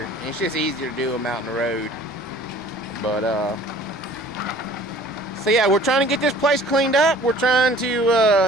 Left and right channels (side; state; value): both; normal; correlation 0.50